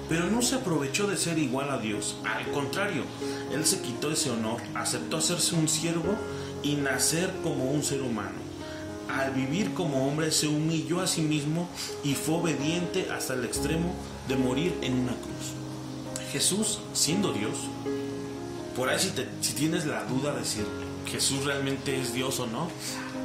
Pero no se aprovechó de ser igual a Dios. Al contrario, Él se quitó ese honor, aceptó hacerse un siervo y nacer como un ser humano. Al vivir como hombre, se humilló a sí mismo y fue obediente hasta el extremo de morir en una cruz. Jesús, siendo Dios, por ahí si tienes la duda de si Jesús realmente es Dios o no,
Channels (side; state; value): both; identical; correlation 1.00